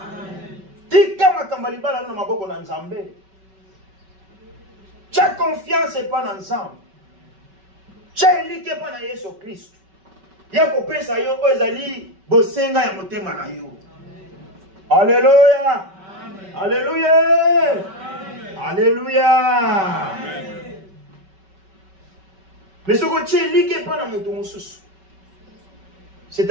Tika makambaliba la na maboko na Nzambe. Tu as confiance c'est pas dans Nzambe. Tu as élité pas dans Jésus Christ. Ya ko pesa yo ezali bosenga ya motema na yo. Alléluia. Alléluia. Alléluia. Mais ce que tu es élité pas dans mon sous. C'est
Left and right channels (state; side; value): late; left; 5.2 ms